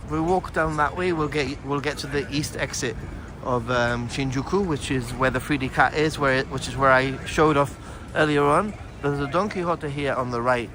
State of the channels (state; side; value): identical; both; correlation 1.00